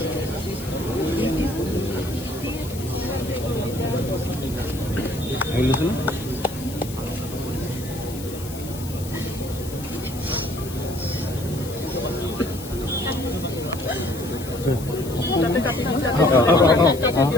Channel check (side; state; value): left; noise; hiss, 14 dB below the sound